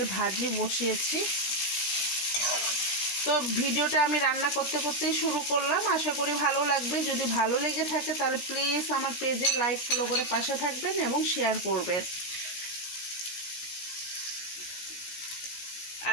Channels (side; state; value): right; late; 16 ms